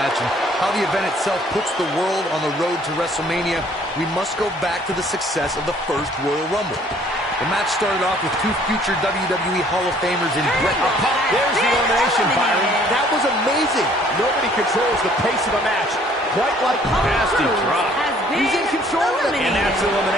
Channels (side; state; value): both; normal; correlation 0.59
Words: and how the event itself puts the world on the road to WrestleMania, we must go back to the success of the first Royal Rumble. The match started off with two future WWE Hall of Famers in Bret. There's the elimination, Byron. That was amazing. Nobody controls the pace of a match quite like Nasty drop. He's in control of it. And that's